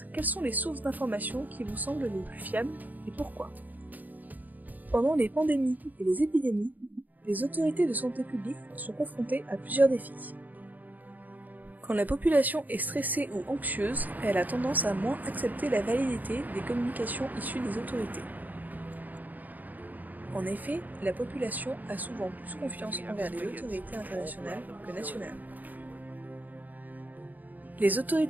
quelles sont les sources d'informations qui vous semblent les plus fiables et pourquoi. Pendant les pandémies et les épidémies, les autorités de santé publique sont confrontées à plusieurs défis. Quand la population est stressée ou anxieuse, elle a tendance à moins accepter la validité des communications issues des autorités. En effet, la population a souvent plus confiance envers les autorités internationales que nationales. Les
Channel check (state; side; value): late; left; 0.082 ms